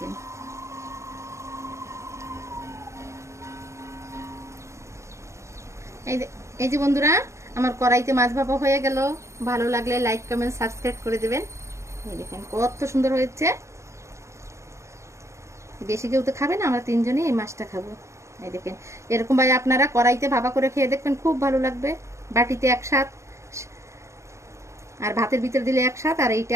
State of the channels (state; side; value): late; left; 0.14 ms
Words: এই যে বন্ধুরা, আমার কড়াইতে মাছ ভাপা হয়ে গেল। ভালো লাগলে লাইক কমেন্ট সাবস্ক্রাইব করে দেবেন। এই দেখেন কত সুন্দর হয়েছে। বেশি কেউ তো খাবে না, আমরা তিনজনই এই মাছটা খাবো। এই দেখেন এরকম ভাবে আপনারা কড়াইতে ভাপা করে খেয়ে দেখবেন, খুব ভালো লাগবে। বাটিতে এক স্বাদ, আর ভাতের ভিতর দিলে এক স্বাদ, আর এইটা